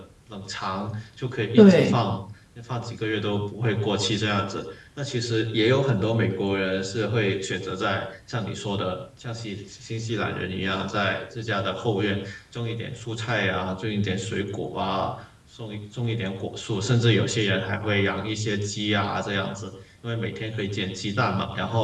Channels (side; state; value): both; identical; correlation 1.00